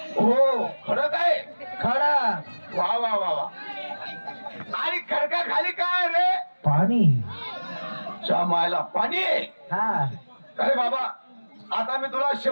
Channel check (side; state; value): both; inverted; correlation -1.00